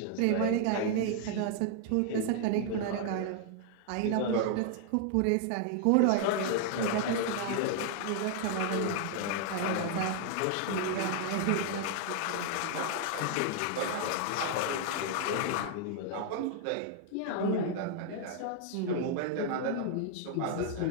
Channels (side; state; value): both; different; correlation 0.00